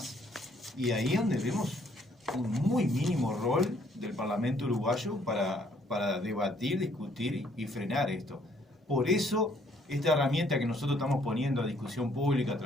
Y ahí es donde vemos un muy mínimo rol del Parlamento uruguayo para debatir, discutir y frenar esto. Por eso, esta herramienta que nosotros estamos poniendo a discusión pública a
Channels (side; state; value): both; normal; correlation 0.65